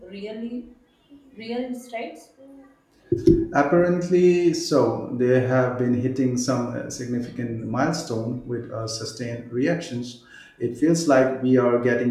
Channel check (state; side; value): identical; both; correlation 1.00